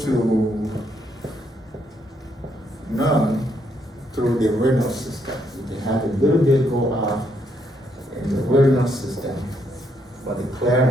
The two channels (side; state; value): both; normal; correlation 0.74